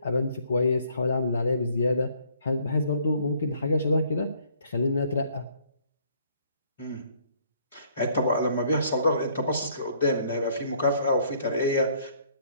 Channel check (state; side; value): inverted; both; correlation -0.63